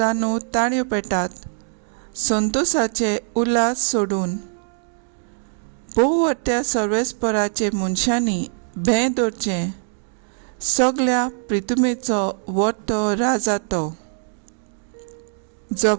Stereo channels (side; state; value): left; silent; digital silence